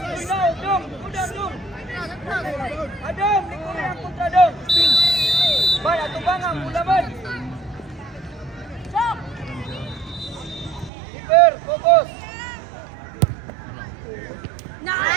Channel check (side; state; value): left; drops out; at 10.9 s